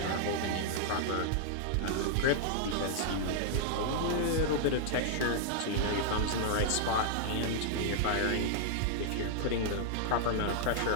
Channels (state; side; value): different; both; correlation -0.01